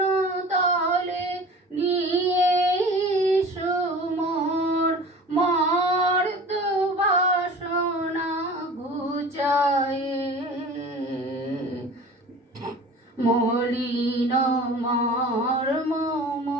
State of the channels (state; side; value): normal; both; correlation 0.40